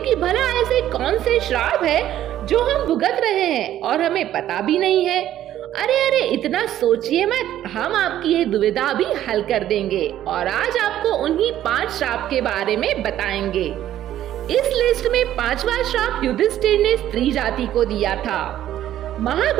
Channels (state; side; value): quieter; left; 12.2 dB